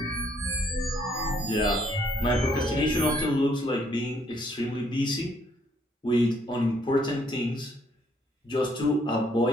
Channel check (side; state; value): both; normal; correlation 0.68